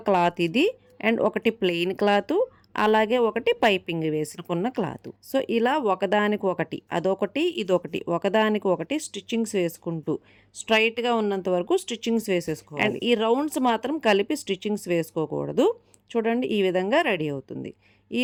క్లాత్ ఇది, అండ్ ఒకటి ప్లెయిన్ క్లాత్, అలాగే ఒకటి పైపింగ్ వేసుకున్న క్లాత్. సో ఇలా ఒకదానికి ఒకటి, అదొకటి ఇదొకటి, ఒకదానికి ఒకటి స్టిచ్చింగ్స్ వేసుకుంటూ స్ట్రైట్గా ఉన్నంత వరకు స్టిచ్చింగ్స్ వేసేసుకోవాలి. అండ్ ఈ రౌండ్స్ మాత్రం కలిపి స్టిచ్చింగ్స్ వేసుకోకూడదు. చూడండి ఈ విధంగా రెడీ అవుతుంది. ఈ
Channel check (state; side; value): identical; both; correlation 1.00